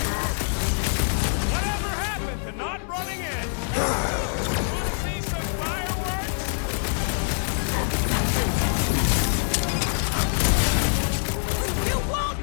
Whatever happened to not running in? Wanna see some fireworks? You won't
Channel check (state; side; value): silent; right; digital silence